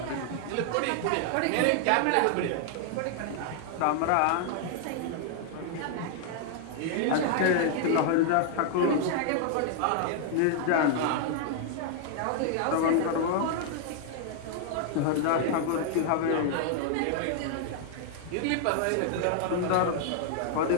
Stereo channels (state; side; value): different; both; correlation 0.00